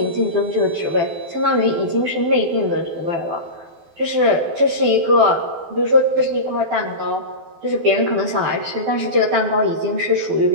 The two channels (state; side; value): late; left; 12 ms